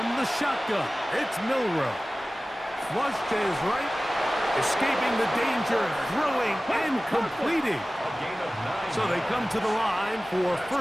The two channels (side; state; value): both; normal; correlation 0.97